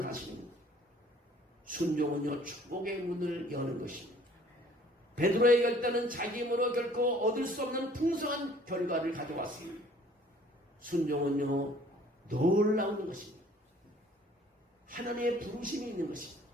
사실입니다. 순종은요, 축복의 문을 여는 것입니다. 베드로의 결단은 자기 힘으로 결코 얻을 수 없는 풍성한 결과를 가져왔습니다. 순종은요, 놀라운 것입니다. 하나님의 부르심이 있는 것입니다.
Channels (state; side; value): normal; both; correlation 0.55